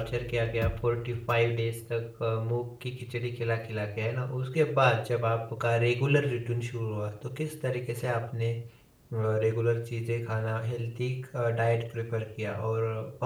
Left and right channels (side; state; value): both; identical; correlation 1.00